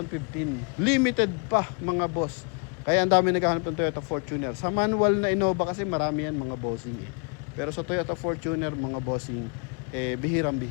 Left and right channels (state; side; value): quieter; right; 38.0 dB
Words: Limited pa mga boss. Kaya ang dami naghahanap ng Toyota Fortuner. Sa manual na Innova kasi marami yan mga bossing Pero sa Toyota Fortuner mga bossing,